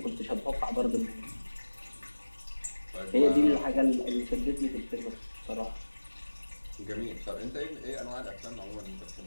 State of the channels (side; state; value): both; inverted; correlation -1.00